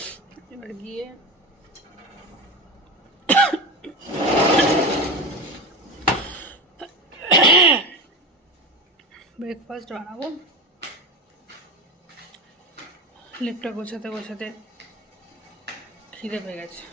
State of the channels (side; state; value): both; normal; correlation 0.24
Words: এবার গিয়ে ব্রেকফাস্ট বানাবো। লেপটা গোছাতে গোছাতে খিদে পেয়ে গেছে।